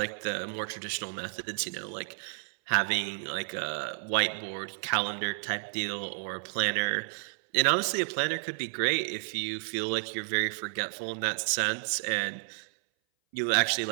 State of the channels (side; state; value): left; silent; 57 dB below the other